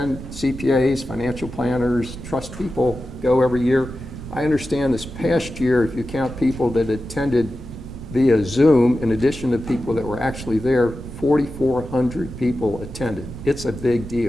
CPAs, financial planners, trust people go every year. I understand this past year, if you count people that attended via Zoom, in addition to people that were actually there, 4,400 people attended. It's a big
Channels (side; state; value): right; noise; rumble, 12 dB below the sound